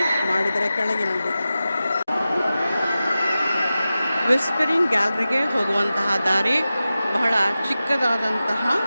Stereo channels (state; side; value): inverted; both; correlation -0.94